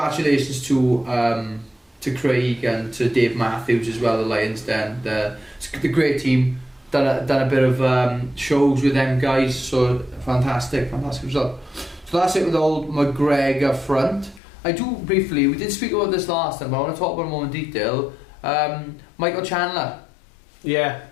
to Craig and to Dave Matthews as well, the Lions Den. The great team. Done a bit of shows with them guys, so fantastic result. So that's it with the old McGregor front. I do briefly, we did speak about this last time, but I want to talk about it more in detail. Michael Chandler. Yeah.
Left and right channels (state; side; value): drops out; right; at 14.4 s